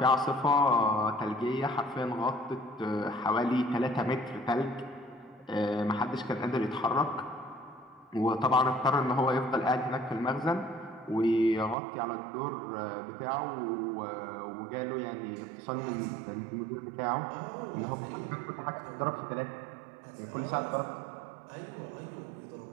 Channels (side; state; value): left; drops out; at 11.8 s